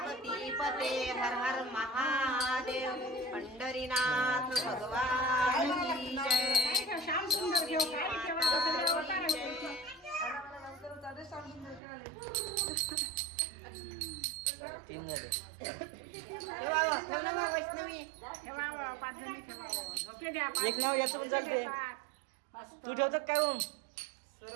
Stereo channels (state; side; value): drops out; left; at 11.8 s